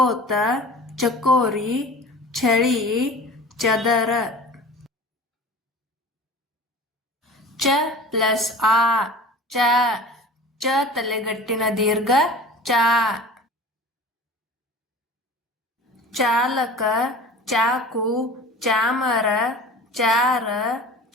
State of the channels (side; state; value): both; normal; correlation 0.39